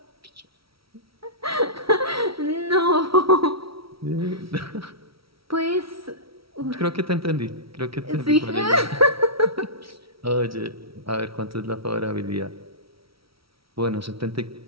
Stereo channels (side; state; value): left; late; 0.75 ms